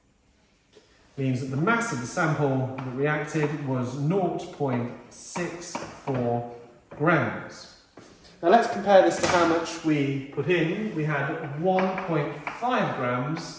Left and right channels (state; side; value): identical; both; correlation 1.00